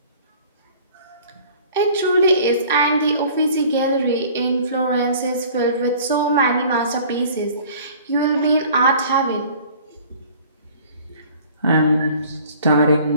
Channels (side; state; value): both; inverted; correlation -0.49